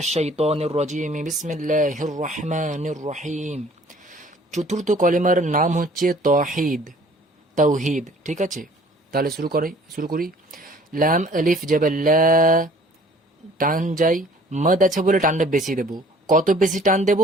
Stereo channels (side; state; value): both; normal; correlation 0.54